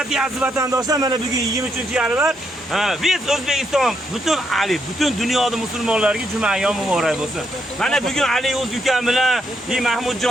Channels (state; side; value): normal; both; correlation 0.77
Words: aziz vatandoshlar. Mana bugun 23-yanvar. Biz O'zbekiston butun dunyoda musulmonlarga juma ayyom muborak bo'lsin. Mana bugun Ali o'z ukam bilan,